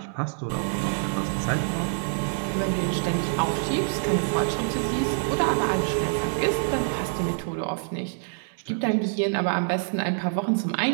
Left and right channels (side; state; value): left; silent; digital silence